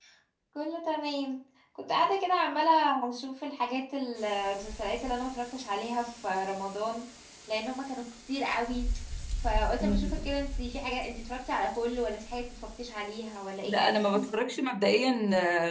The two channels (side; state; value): both; identical; correlation 1.00